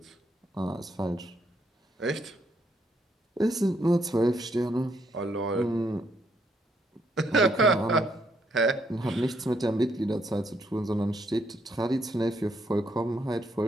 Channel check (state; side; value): normal; both; correlation 0.73